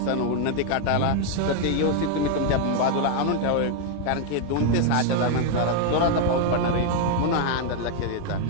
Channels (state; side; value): different; both; correlation 0.00